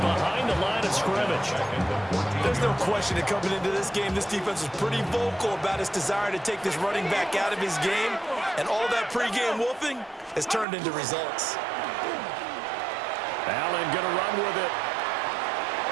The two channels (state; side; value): drops out; left; at 10.7 s